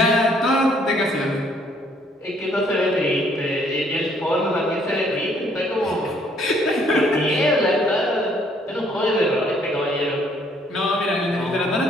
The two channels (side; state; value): both; normal; correlation 0.65